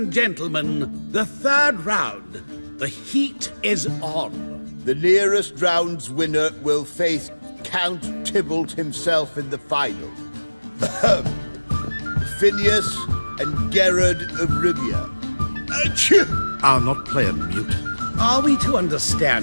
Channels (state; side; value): inverted; both; correlation -1.00